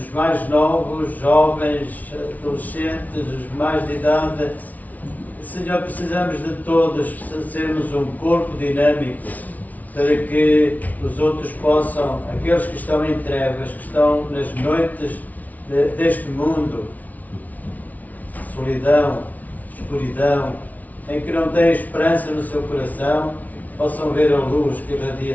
mais novos, jovens, adolescentes, os mais de idade, Senhor, precisamos de todos sermos um corpo dinâmico para que os outros possam, aqueles que estão em trevas, que estão nas noites deste mundo, solidão, escuridão, em que não têm esperança no seu coração, possam ver a luz que irradia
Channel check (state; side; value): late; right; 0.074 ms